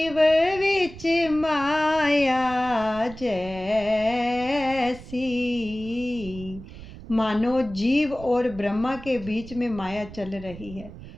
विच माया जैसी, सी। मानो जीव और ब्रह्मा के बीच में माया चल रही है।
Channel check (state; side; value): noise; right; rumble, 15 dB below the sound